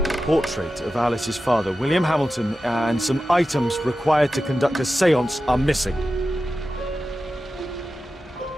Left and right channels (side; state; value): both; normal; correlation 0.93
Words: Portrait of Alice's father, William Hamilton, and some items required to conduct a séance are missing.